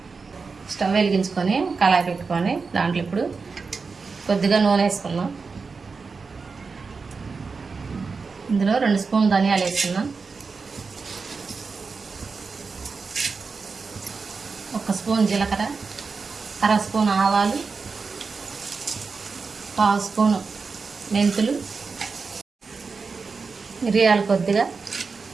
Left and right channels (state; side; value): quieter; left; 4.7 dB